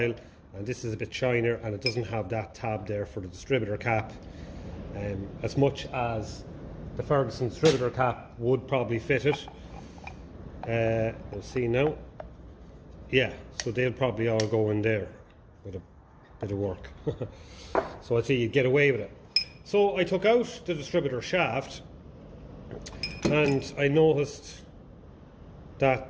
and this is a bit shinier, and it doesn't have that tab there for the distributor cap, as much as the Ferguson distributor cap would probably fit it. We'll see now. Yeah, so they'll probably all go in there with a bit of work. So I'd say you'd get away with it. So I took out the distributor shaft, and I noticed that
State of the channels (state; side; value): identical; both; correlation 1.00